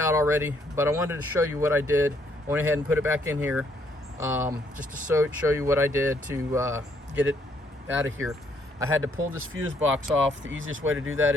already, but I wanted to show you what I did. I went ahead and put it back in here, just to show you what I did to get it out of here. I had to pull this fuse box off. The easiest way to do that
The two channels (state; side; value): normal; both; correlation 0.69